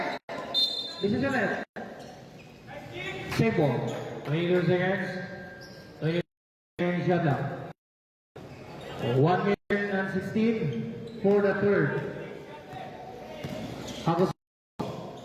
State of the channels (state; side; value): identical; both; correlation 1.00